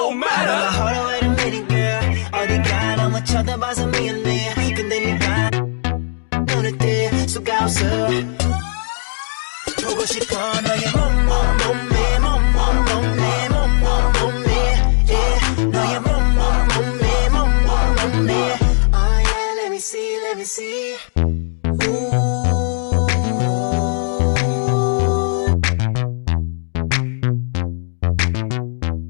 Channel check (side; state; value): right; silent; digital silence